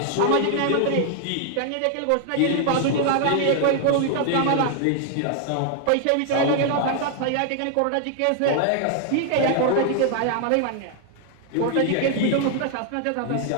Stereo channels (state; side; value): different; both; correlation 0.00